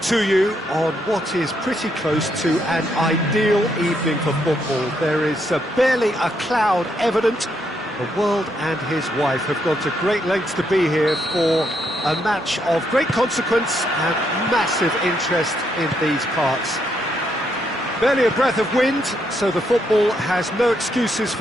to you on what is pretty close to an ideal evening for football. There is barely a cloud evident. The world and his wife have gone to great lengths to be here for a match of great consequence and massive interest in these parts. Barely a breath of wind, so the football has no excuses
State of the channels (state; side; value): normal; both; correlation 0.76